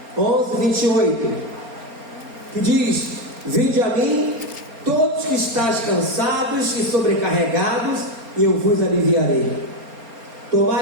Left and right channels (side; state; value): left; late; 4.3 ms